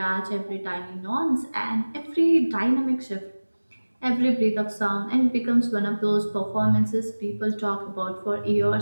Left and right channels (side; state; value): both; inverted; correlation -1.00